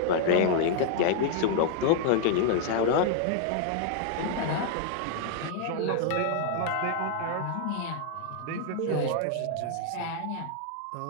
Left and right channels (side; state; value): both; different; correlation 0.00